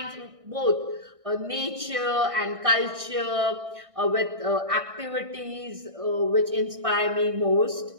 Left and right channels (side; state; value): left; late; 1.6 ms